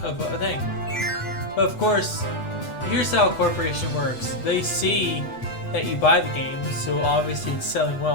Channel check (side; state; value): right; late; 8.2 ms